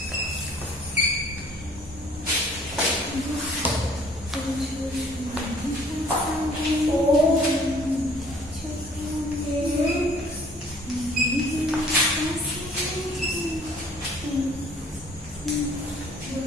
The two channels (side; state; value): both; normal; correlation 0.55